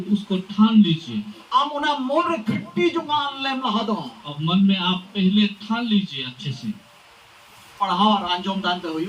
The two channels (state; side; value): identical; both; correlation 1.00